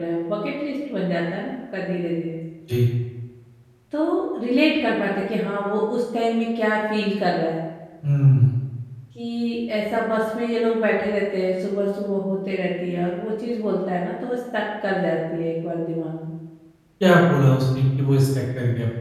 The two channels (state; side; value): identical; both; correlation 1.00